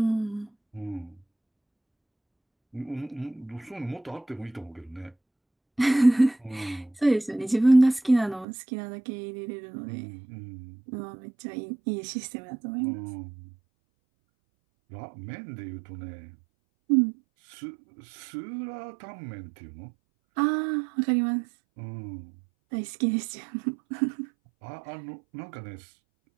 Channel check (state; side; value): drops out; left; at 8.5 s